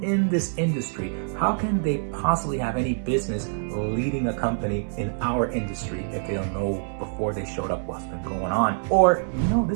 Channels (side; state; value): left; silent; 57 dB below the other